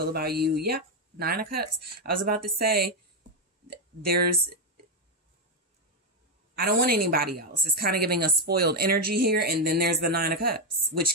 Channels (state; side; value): normal; both; correlation 0.04